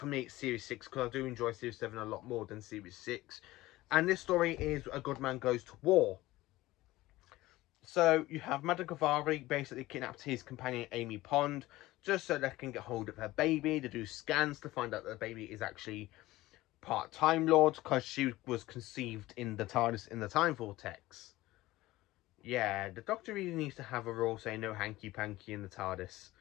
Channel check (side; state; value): right; quieter; 17.7 dB